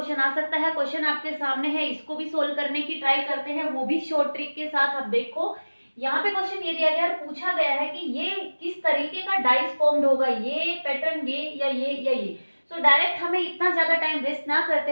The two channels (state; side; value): inverted; both; correlation -1.00